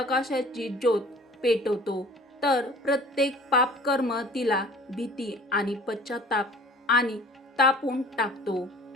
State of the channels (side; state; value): both; normal; correlation 0.48